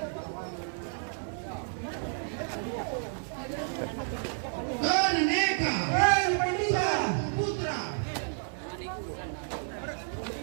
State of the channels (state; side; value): silent; left; 57 dB below the other